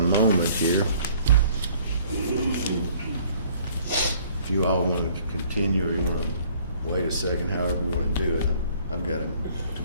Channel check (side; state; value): both; inverted; correlation -0.57